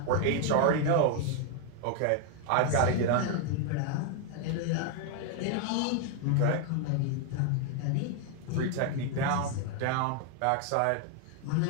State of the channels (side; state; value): both; different; correlation 0.00